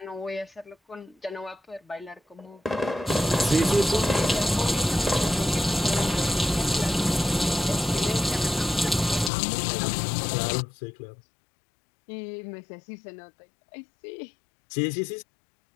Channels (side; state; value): right; drops out; at 9.3 s